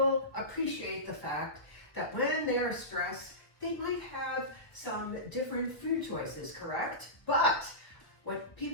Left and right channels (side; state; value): right; late; 1.3 ms